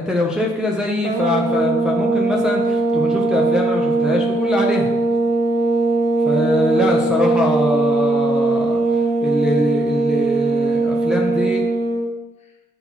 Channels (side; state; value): both; normal; correlation 0.75